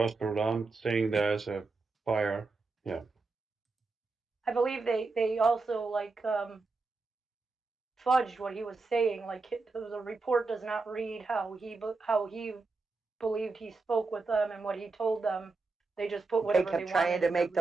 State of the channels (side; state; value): left; quieter; 3.9 dB